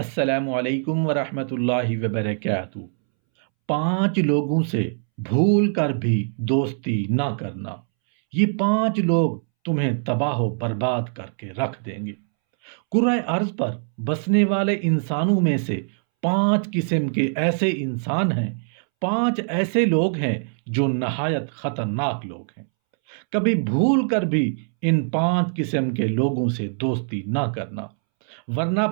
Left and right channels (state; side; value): silent; left; 63 dB below the other